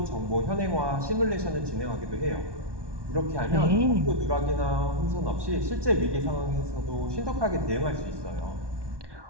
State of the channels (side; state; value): left; late; 1.2 ms